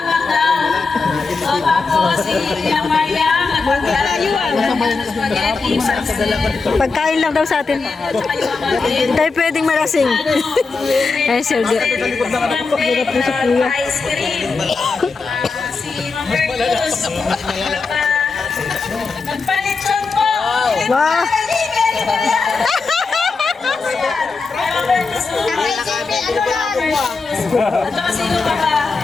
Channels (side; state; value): right; quieter; 4.3 dB